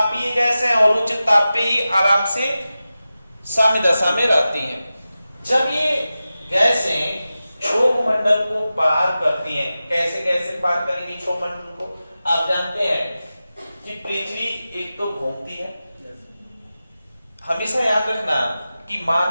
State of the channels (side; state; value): both; inverted; correlation -0.94